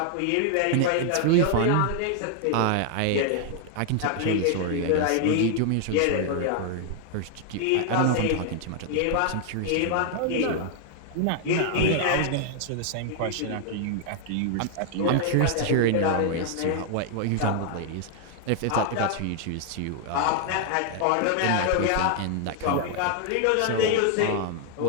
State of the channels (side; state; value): both; different; correlation 0.00